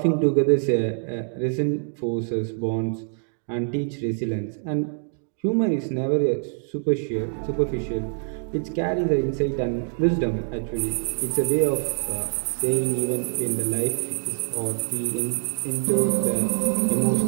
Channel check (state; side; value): silent; left; 58 dB below the other